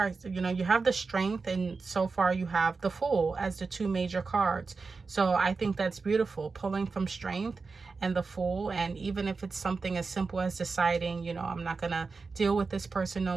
You know, you have the Strength, and so far you have the Fool as the 2 major cards. So I think that's beautiful, pulling from Strength and the Fool. And even if it's something as simple as deciding, you know, I'm not going to deal with this person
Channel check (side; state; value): left; quieter; 4.4 dB